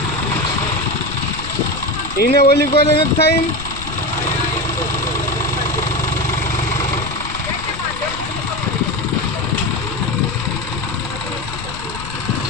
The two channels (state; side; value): noise; left; rumble, 10 dB below the sound